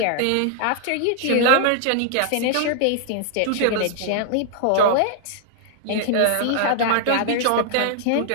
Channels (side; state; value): both; different; correlation 0.00